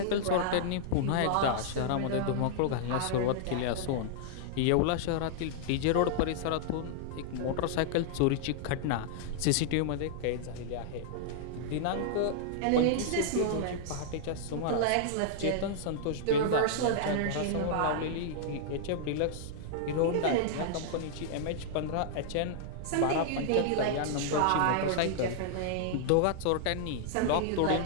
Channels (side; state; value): both; different; correlation -0.01